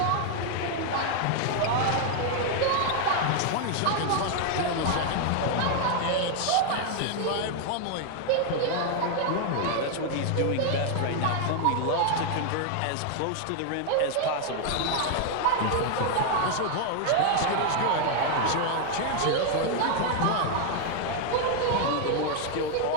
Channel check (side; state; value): both; different; correlation 0.00